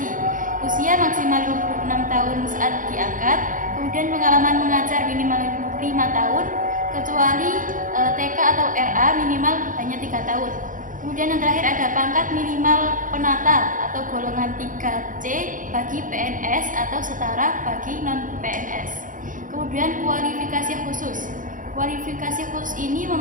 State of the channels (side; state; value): left; late; 0.38 ms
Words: usia maksimal 26 tahun saat diangkat, kemudian pengalaman mengajar minimal 5 tahun, kecuali TK atau RA minimal hanya 3 tahun. Kemudian yang terakhir ada pangkat minimal penata atau golongan 3C bagi PNS atau setara bagi non-PNS. Kemudian kualifikasi khusus. Kualifikasi khusus ini